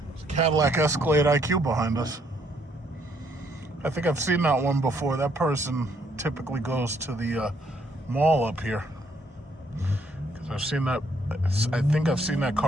There's a Cadillac Escalade IQ behind us. I think I've seen that one before. That person typically goes to the mall up here. Because I've seen that. I think I've seen that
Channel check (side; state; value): both; normal; correlation 0.69